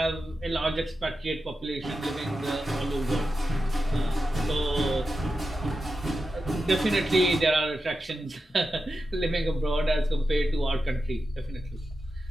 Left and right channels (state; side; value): normal; both; correlation 0.90